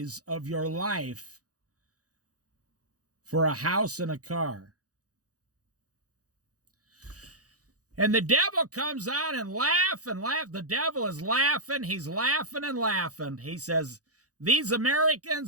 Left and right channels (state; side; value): late; left; 0.67 ms